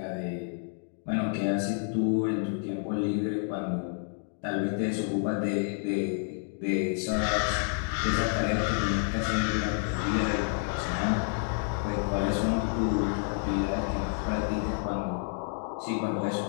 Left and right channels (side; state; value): right; silent; 58 dB below the other